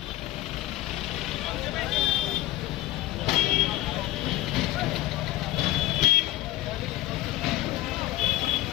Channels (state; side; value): quieter; right; 16.0 dB